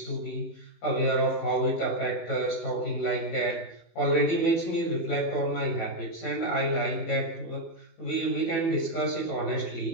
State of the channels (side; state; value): right; late; 18 ms